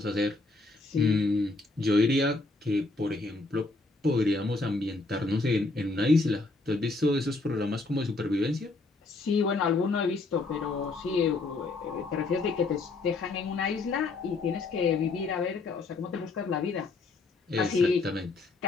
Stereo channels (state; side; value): quieter; right; 3.4 dB